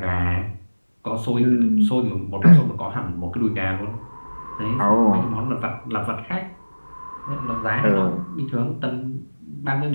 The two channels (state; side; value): inverted; both; correlation -1.00